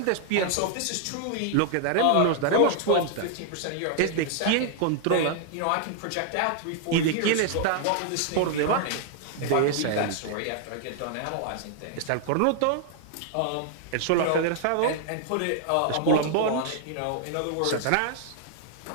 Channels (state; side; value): different; both; correlation 0.00